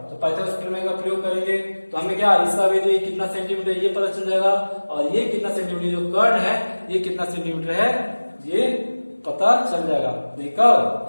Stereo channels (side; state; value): both; inverted; correlation -1.00